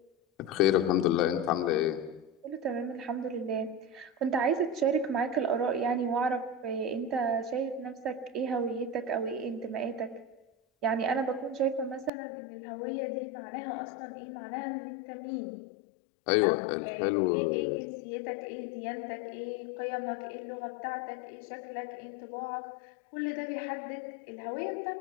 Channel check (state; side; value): drops out; right; at 12.1 s